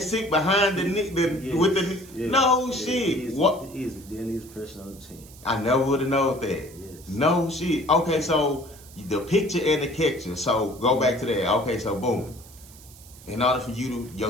sit behind the nigga with the no shit. What? He is the deadliest person on the team. I never would have known that. Yes. No shit. Okay, so the picture and the catcher. So go back to that. Okay, so boom. In order for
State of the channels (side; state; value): right; noise; hiss, 21 dB below the sound